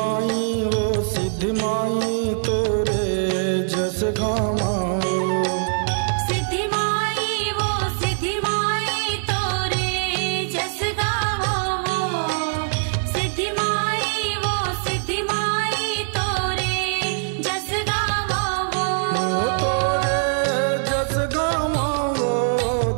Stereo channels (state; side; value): silent; left; digital silence